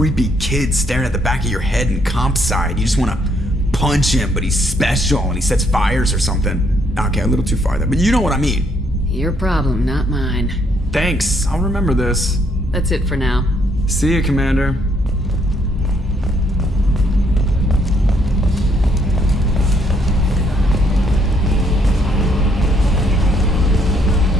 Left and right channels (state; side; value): normal; both; correlation 0.70